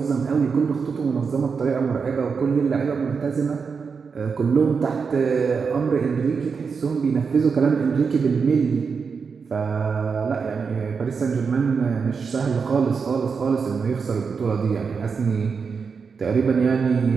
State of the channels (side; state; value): left; quieter; 5.5 dB